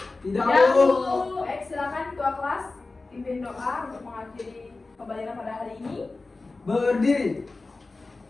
Tidak, Bu. Bu. Baik, silakan ketua kelas pimpin doa untuk mengakhiri pembelajaran pada hari ini. Berdiri.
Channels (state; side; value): quieter; right; 3.5 dB